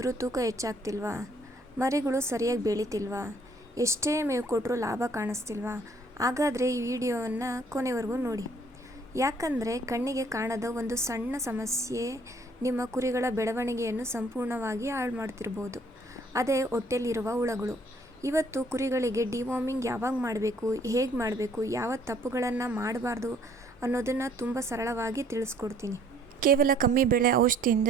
ತೂಕ ಹೆಚ್ಚಾಗ್ತಿಲ್ವಾ? ಮರಿಗಳು ಸರಿಯಾಗಿ ಬೆಳೀತಿಲ್ವಾ? ಎಷ್ಟೇ ಮೇವು ಕೊಟ್ಟರೂ ಲಾಭ ಕಾಣಿಸ್ತಿಲ್ವಾ? ಹಾಗಾದರೆ ಈ ವಿಡಿಯೋವನ್ನು ಕೊನೆವರೆಗೂ ನೋಡಿ. ಯಾಕಂದರೆ ಕಣ್ಣಿಗೆ ಕಾಣದ ಒಂದು ಸಣ್ಣ ಸಮಸ್ಯೆ ನಿಮ್ಮ ಕುರಿಗಳ ಬೆಳವಣಿಗೆಯನ್ನು ಸಂಪೂರ್ಣವಾಗಿ ಹಾಳು ಮಾಡ್ತಿರ್ಬೋದು. ಅದೇ ಹೊಟ್ಟೆಲಿರುವ ಹುಳಗಳು. ಇವತ್ತು ಕುರಿಗಳಿಗೆ ಡಿವಾರ್ಮಿಂಗ್ ಯಾವಾಗ ಮಾಡಬೇಕು, ಹೇಗೆ ಮಾಡಬೇಕು, ಯಾವ ತಪ್ಪುಗಳನ್ನು ಮಾಡಬಾರ್ದು ಅನ್ನೋದನ್ನು ತುಂಬ ಸರಳವಾಗಿ ತಿಳಿಸ್ಕೊಡ್ತೀನಿ. ಕೇವಲ ಕಮ್ಮಿ ಬೆಳೆ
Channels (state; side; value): normal; both; correlation 0.61